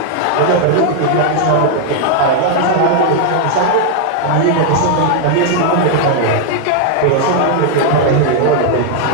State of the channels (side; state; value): both; different; correlation 0.00